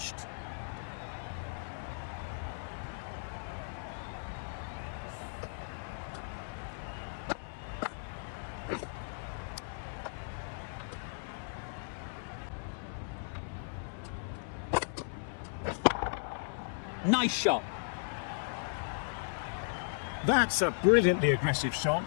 Nice shot. That's a brilliantly aggressive shot.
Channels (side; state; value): right; silent; 54 dB below the other